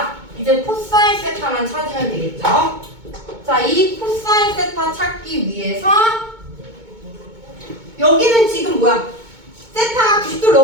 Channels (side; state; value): left; late; 2.2 ms